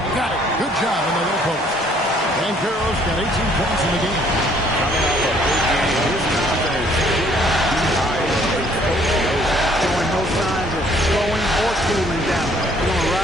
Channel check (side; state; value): both; normal; correlation 0.62